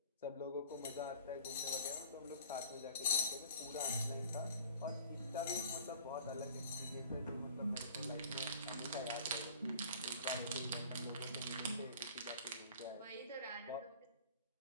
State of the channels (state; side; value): inverted; both; correlation -0.47